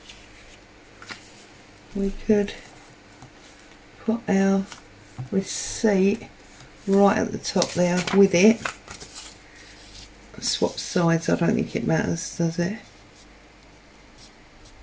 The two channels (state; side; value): identical; both; correlation 1.00